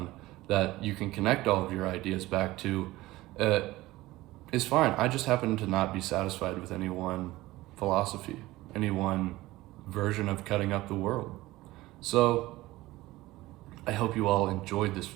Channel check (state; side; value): quieter; left; 18.2 dB